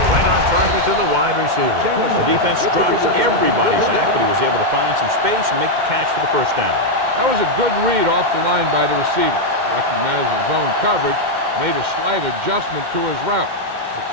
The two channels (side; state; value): left; late; 2.1 ms